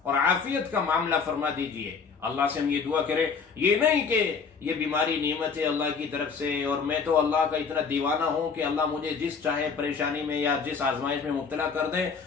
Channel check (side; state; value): right; quieter; 5.5 dB